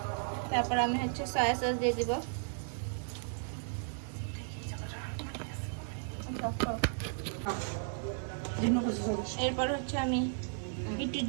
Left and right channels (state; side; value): silent; left; 55 dB below the other